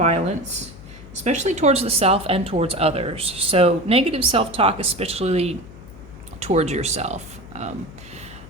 especially towards the self and towards others. So negative self-talk, especially towards yourself.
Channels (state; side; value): noise; left; hum, 18 dB below the sound